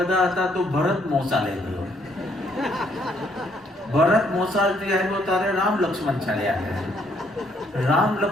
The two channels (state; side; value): normal; both; correlation 0.69